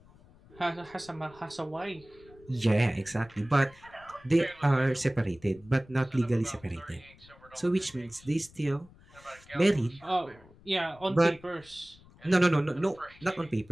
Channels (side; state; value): left; noise; rumble, 25 dB below the sound